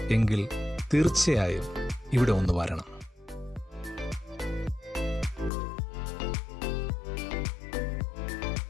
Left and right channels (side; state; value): right; drops out; at 5.5 s